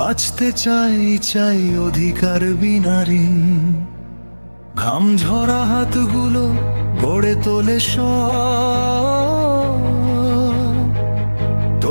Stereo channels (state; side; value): inverted; both; correlation -1.00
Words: চাই অধিকার বিনা ঋণ। ঘাম ঝরা হাতগুলো গড়ে তোলে সব,